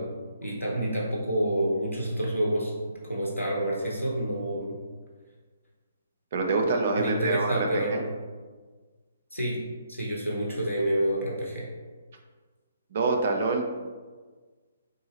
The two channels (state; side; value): inverted; both; correlation -0.72